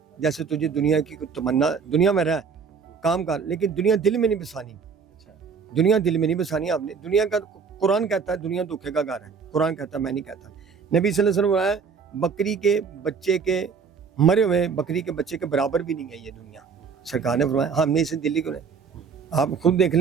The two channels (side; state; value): left; quieter; 5.8 dB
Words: جیسے تجھے دنیا کی تمنا, دنیا میں رہ کام کر, لیکن دنیا دل میں نہیں بسانی. دنیا دل میں نہیں بسانی آپ نے. دنیا کا قرآن کہتا ہے دنیا دھوکے کا گھر ہے, قرآن کہتا ہے, میں نہیں کہتا. نبی صلی اللہ علیہ وسلم ہے بکری کے بچے کے, مرے ہوئے بکری کے بچے کے برابر بھی نہیں ہے یہ دنیا. سرکار نے فرمایا ہم نے اسے دلی کو نہیں. آپ خود دیکھ